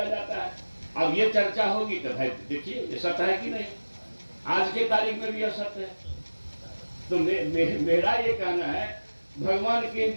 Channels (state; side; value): inverted; both; correlation -1.00